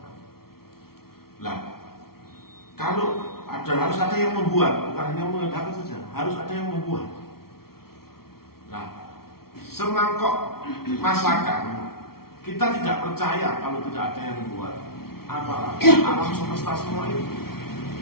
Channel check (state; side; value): late; right; 0.94 ms